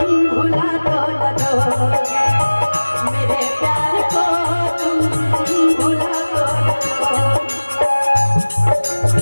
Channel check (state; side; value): inverted; both; correlation -1.00